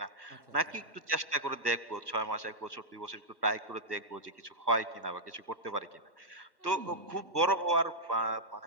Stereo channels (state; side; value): late; left; 1.1 ms